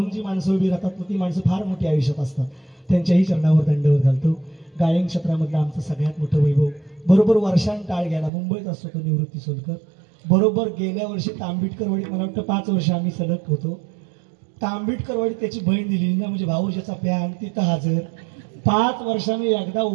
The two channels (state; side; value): drops out; left; at 8.3 s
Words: जी माणसं उभी राहतात ती माणसं फार मोठी आयुष्यात असतात. त्यांच्याही चरणावर दंडवत घालतो. गायन क्षेत्रामधलं आमचं सगळ्यात मोठं वैभव बरोबर वर्षांत टाळ घ्यायला मुंबईत असतो तो निवृत्ती सोलकर. बरोबर गेल्या वर्षी तांबिटकरवाडीत मला वाटतं 5 वर्ष आम्ही सलग होतो. तांबिटकरवाडीत त्याची बहीण दिली ना, म्हणजे भाऊजीचा प्यान तिथं हजर. 5 वर्षांनी एकदा